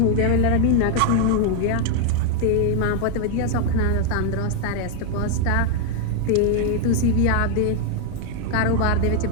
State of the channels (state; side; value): different; both; correlation 0.01